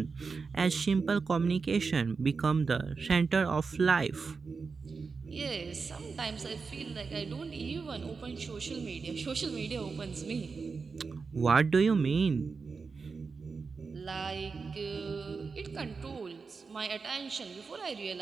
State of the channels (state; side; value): quieter; left; 4.8 dB